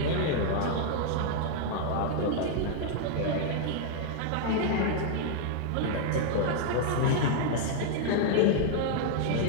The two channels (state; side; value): different; both; correlation 0.00